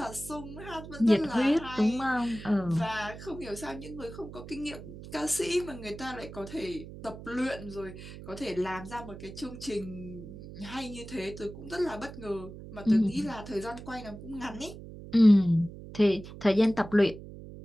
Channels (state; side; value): noise; right; hum, 13 dB below the sound